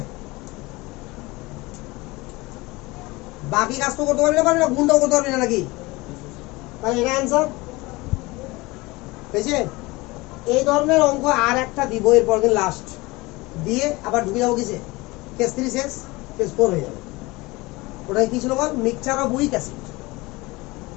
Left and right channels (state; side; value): quieter; right; 22.4 dB